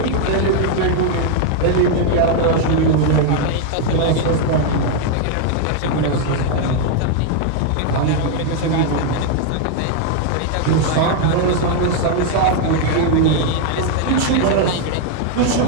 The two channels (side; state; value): both; different; correlation 0.00